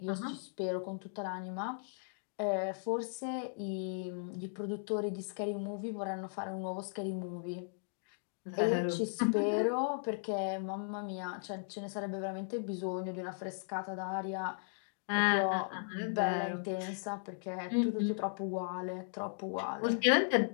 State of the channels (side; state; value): right; silent; digital silence